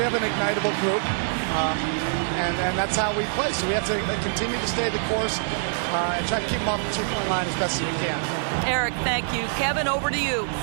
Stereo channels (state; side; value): silent; left; digital silence